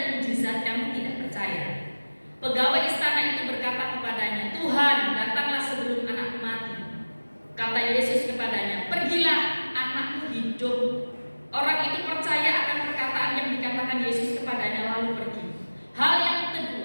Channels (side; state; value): both; inverted; correlation -1.00